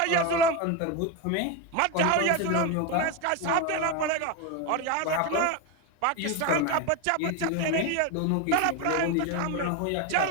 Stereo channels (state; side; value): different; both; correlation 0.03